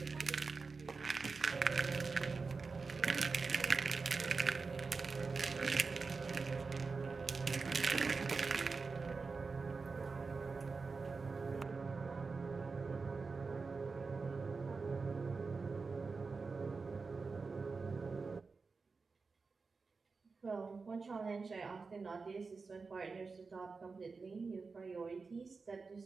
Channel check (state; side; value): quieter; left; 4.5 dB